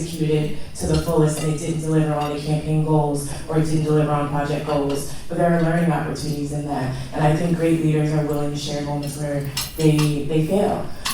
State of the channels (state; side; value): identical; both; correlation 1.00